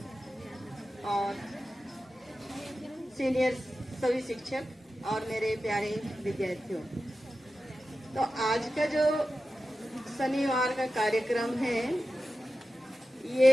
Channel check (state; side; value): normal; both; correlation 0.93